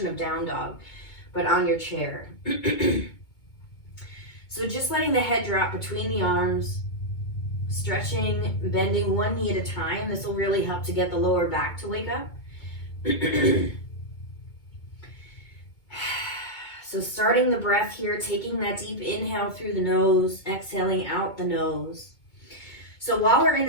of down dog, but on your chair. So just letting the head drop between the arms, stretching, bending one knee at a time. This will really help to get the lower back to wake up. So starting the breath here, taking that deep inhale through the nose, exhaling out the nose. So while we're in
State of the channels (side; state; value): right; late; 2.2 ms